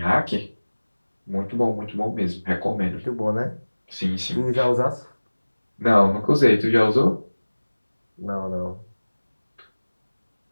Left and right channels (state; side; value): inverted; both; correlation -1.00